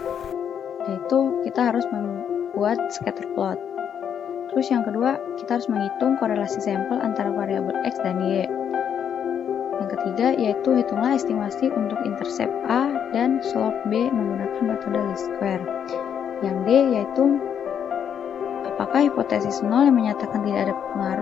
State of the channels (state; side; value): quieter; right; 8.4 dB